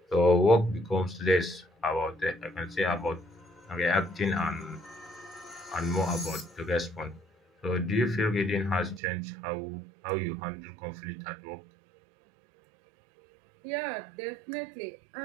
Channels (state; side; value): drops out; left; at 9.0 s